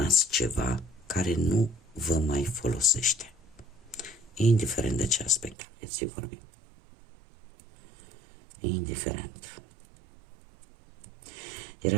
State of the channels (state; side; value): drops out; left; at 5.6 s